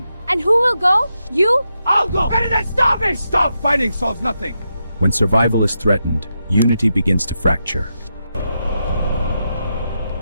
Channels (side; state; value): both; inverted; correlation -0.86